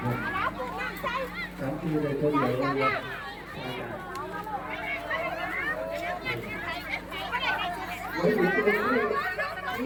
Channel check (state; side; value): identical; both; correlation 1.00